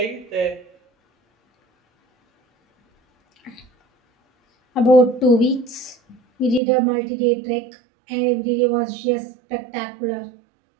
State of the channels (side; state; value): left; drops out; at 6.6 s